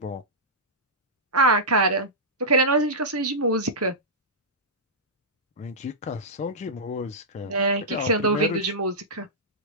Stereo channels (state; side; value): normal; both; correlation -0.14